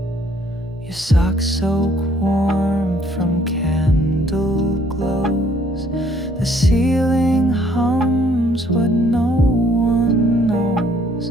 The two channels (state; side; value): normal; both; correlation 0.63